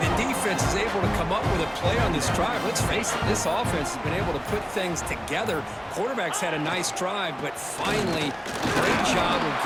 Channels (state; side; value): identical; both; correlation 1.00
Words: defense is able to come up with a play on this drive. Let's face it, this offense has been able to put things together. Quarterback's had a nice drive, but finally, great job of